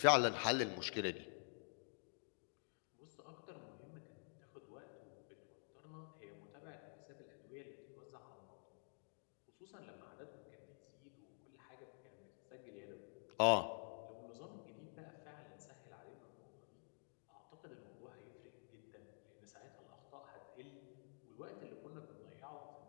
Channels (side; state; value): right; silent; digital silence